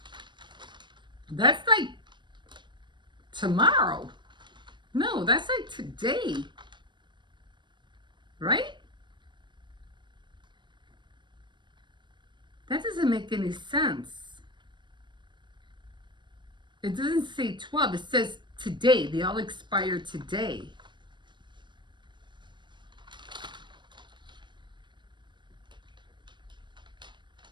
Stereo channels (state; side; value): late; left; 0.22 ms